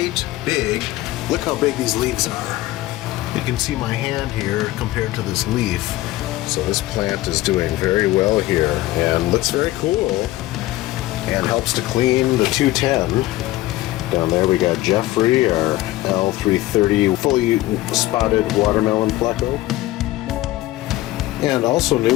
big. Look how big these leaves are. You can see my hand here compared to this leaf. So this plant is doing very well here and looks very cool and helps to clean the 210. Down there we got Jeffrey, our L330 fully spotted watermelon pleco. And also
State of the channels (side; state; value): right; quieter; 16.9 dB